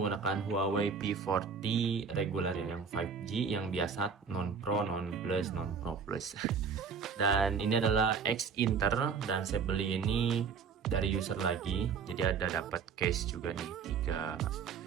Huawei P40 regular ya, yang 5G, yang biasa, non Pro, non Plus, non Pro Plus. Dan ini adalah X Inter dan saya beli ini dari user lagi. Jadi ada dapat case juga nih,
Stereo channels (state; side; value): quieter; left; 5.9 dB